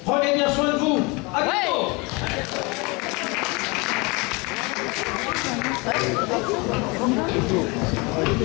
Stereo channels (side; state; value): right; quieter; 27.1 dB